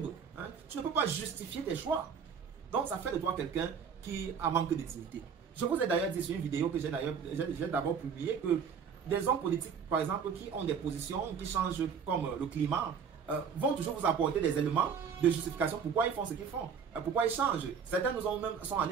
Hein? Tu ne peux pas justifier tes choix. Donc, ça fait de toi quelqu'un qui a manque de dignité. Je vous ai d'ailleurs dit sur une vidéo que j'ai d'abord publiée que des hommes politiques, par exemple, qui ont des positions qui changent comme le climat, vont toujours vous apporter des éléments de justification pourquoi ils font ce qu'ils font, pourquoi ils changent. Certains sont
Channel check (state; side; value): quieter; left; 6.7 dB